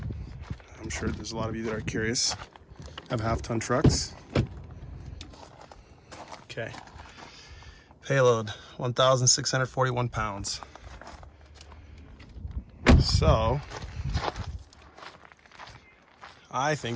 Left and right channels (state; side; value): identical; both; correlation 1.00